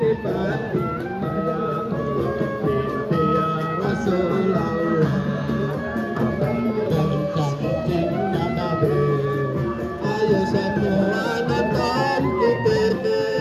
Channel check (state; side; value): identical; both; correlation 1.00